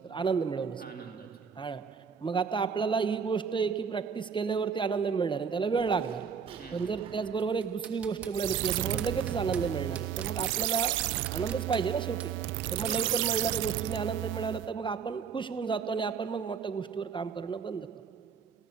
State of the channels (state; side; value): quieter; left; 6.5 dB